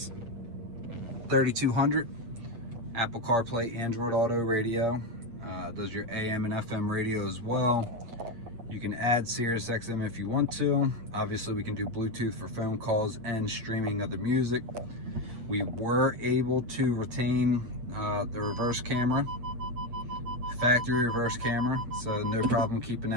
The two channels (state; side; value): late; left; 8.6 ms